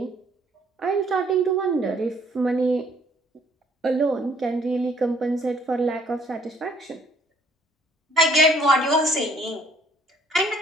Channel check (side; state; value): both; normal; correlation 0.62